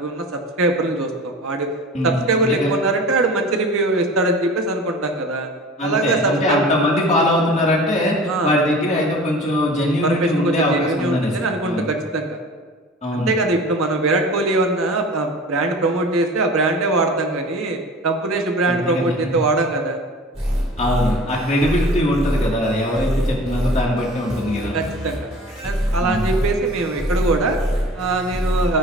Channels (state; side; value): normal; both; correlation 0.41